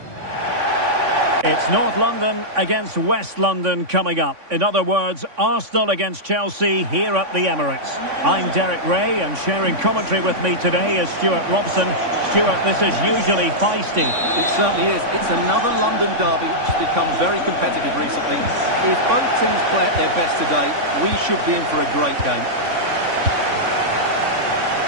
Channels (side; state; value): left; late; 3.5 ms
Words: It's North London against West London coming up. In other words, Arsenal against Chelsea here at the Emirates. I'm Derek Ray, and sharing commentary with me today is Stuart Robson. Stuart, this is usually feisty. It certainly is. It's another London derby which has become very competitive recently. If both teams play at their best today, we should be in for a great game.